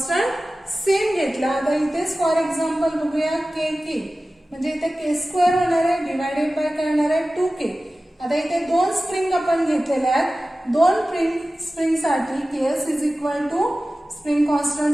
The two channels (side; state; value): both; normal; correlation 0.96